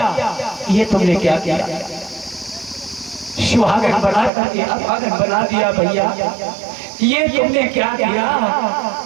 ये तुमने क्या किया? सुहागन बना करके अभागन बना दिया भैया, ये तुमने क्या किया?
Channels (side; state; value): left; drops out; at 4.3 s